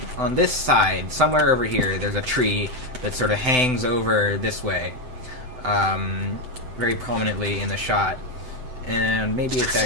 On this side, somewhere over here, there's a tree that sort of hangs over this way, very prominently in the shot. And maybe it's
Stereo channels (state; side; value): late; left; 7.9 ms